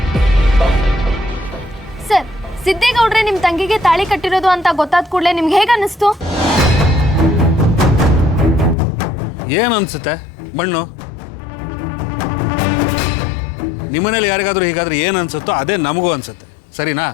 ಸರ್, ಸಿದ್ದೇಗೌಡ್ರೆ ನಿಮ್ಮ ತಂಗಿಗೆ ತಾಳಿ ಕಟ್ಟಿರೋದು ಅಂತ ಗೊತ್ತಾದ ಕೂಡಲೇ ನಿಮ್ಗೆ ಹೇಗೆ ಅನ್ನಿಸ್ತು? ಏನು ಅನ್ಸುತ್ತೆ? ಮಣ್ಣು. ನಿಮ್ಮನೇಲಿ ಯಾರಿಗಾದ್ರೂ ಹೀಗಾದ್ರೆ ಏನು ಅನ್ಸುತ್ತೋ ಅದೇ ನಮಗೂ ಅನ್ಸುತ್ತೆ, ಸರಿನಾ?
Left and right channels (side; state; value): right; drops out; at 8.8 s